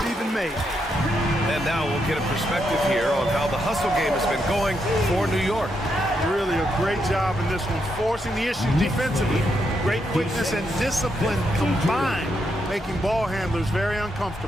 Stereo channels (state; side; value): normal; both; correlation 0.80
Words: even made. And now we'll get a perspective here on how the hustle game has been going for New York. Really a great job in this one, forcing the issue defensively. Great quickness and discipline combined, making ball handlers very